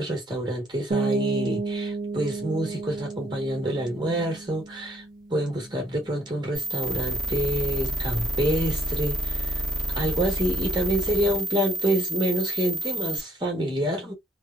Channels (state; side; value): normal; both; correlation 0.68